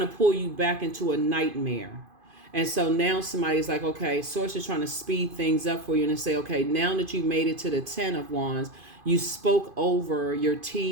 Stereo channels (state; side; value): late; left; 2.5 ms